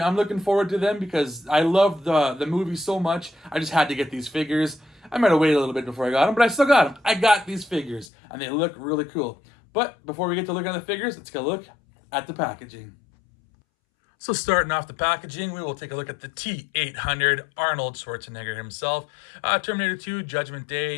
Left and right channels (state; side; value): drops out; right; at 8.1 s